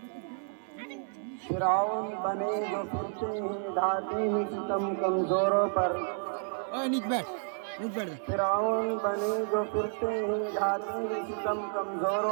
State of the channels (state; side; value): silent; left; 57 dB below the other